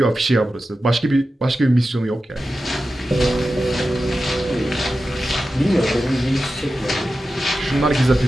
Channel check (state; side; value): normal; both; correlation 0.92